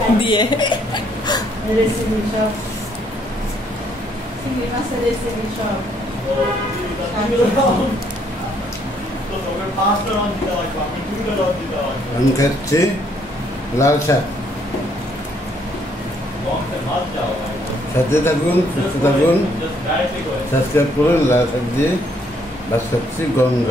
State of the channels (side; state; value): both; normal; correlation 0.68